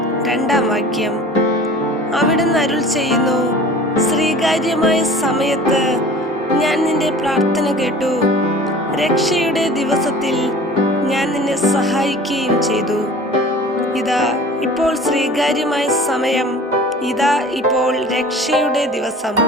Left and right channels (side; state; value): both; normal; correlation 0.43